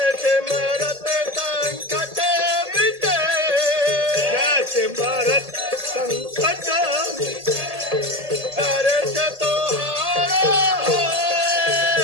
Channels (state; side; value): late; left; 1.8 ms